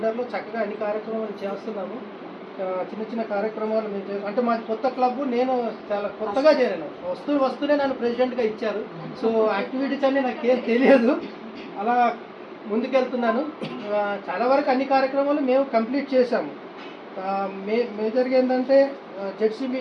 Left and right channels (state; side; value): identical; both; correlation 1.00